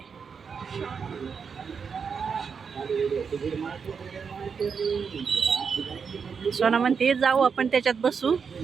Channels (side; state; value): left; quieter; 6.1 dB